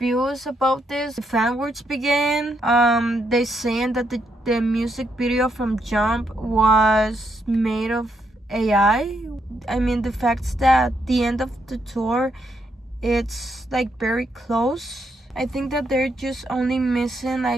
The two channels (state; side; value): normal; both; correlation 0.78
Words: about this. The fan words began. They saying that the music video from Jump was made of AI. I mean, the fact that the end of the tour, it's like very close. I think that they're just only missing